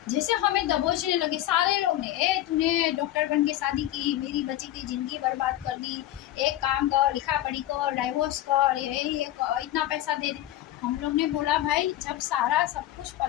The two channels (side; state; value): right; quieter; 13.9 dB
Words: जैसे हमें दबोचने लगे सारे लोग ने। ए तूने डॉक्टर बन के शादी की, मेरी बच्ची की जिंदगी बर्बाद कर दी, एक काम कर, लिखा पढ़ी कर, डाइवोर्स कर, ये इतना पैसा दे दे। हम लोग ने बोला भाई जब सारा सब कुछ